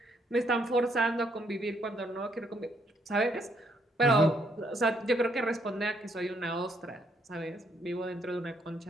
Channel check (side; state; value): both; normal; correlation 0.72